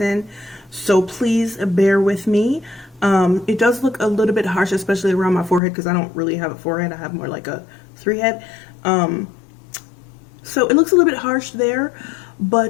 So please bear with me. It does look a little bit harsh, especially around my forehead because I don't really have a forehead. I have more like a 3-head. So it looks a little bit harsh there,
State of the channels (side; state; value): right; drops out; at 5.6 s